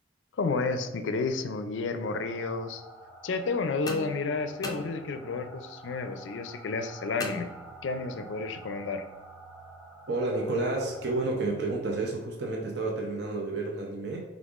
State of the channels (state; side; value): normal; both; correlation 0.17